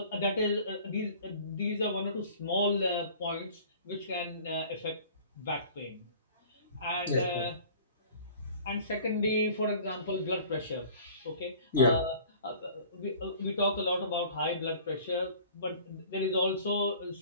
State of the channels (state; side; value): inverted; both; correlation -0.47